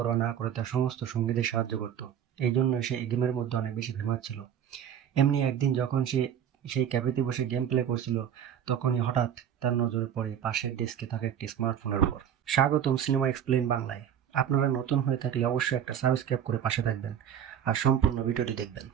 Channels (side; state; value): left; quieter; 9.2 dB